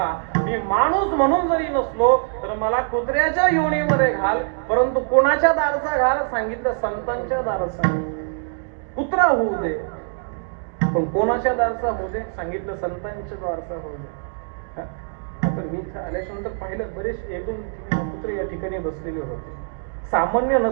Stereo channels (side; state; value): left; silent; digital silence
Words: मी माणूस म्हणून जरी नसलो तर मला कुत्र्याच्या योनीमध्ये घाल, परंतु कोणाच्या दारचा घाल, सांगितलं संतांच्या दारचा. कुत्रा होऊ दे पण कोणाच्या दारचा होऊ दे, सांगितलं संतांच्या दारचा होऊ दे. तर मी आल्याच्यानंतर पाहिलं बरेच 1-2 कुत्रे या ठिकाणी बसलेले होते. सामान्य